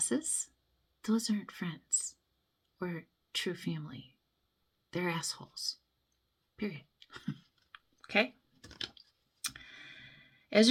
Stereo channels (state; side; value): identical; both; correlation 1.00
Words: those aren't friends or true family. They're assholes. Period. Okay? As